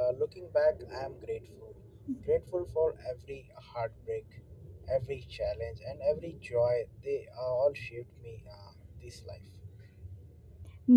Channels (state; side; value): identical; both; correlation 1.00